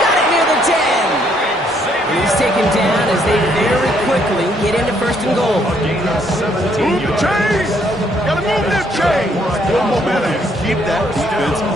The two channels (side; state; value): both; normal; correlation 0.69